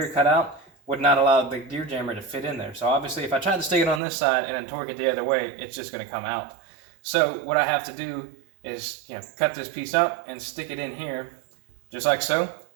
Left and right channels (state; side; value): drops out; left; at 4.0 s